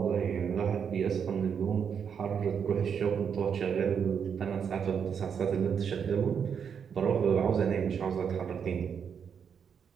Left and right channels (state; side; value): quieter; left; 7.2 dB